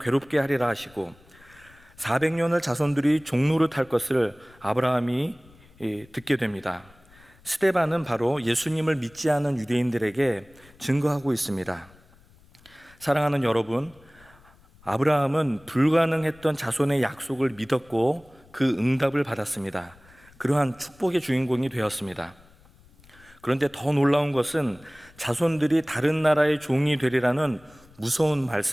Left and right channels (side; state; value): left; noise; rumble, 27 dB below the sound